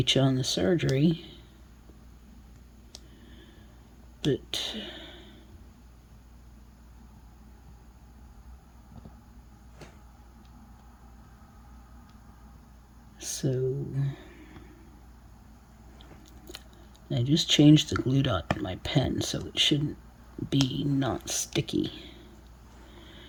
you on the surgery. But So I just changed the glue dot in my pen so it shouldn't be not sticky.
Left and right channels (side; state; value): both; identical; correlation 1.00